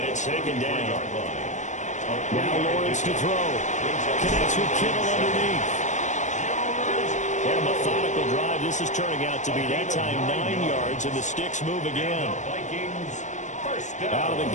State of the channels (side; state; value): right; late; 0.35 ms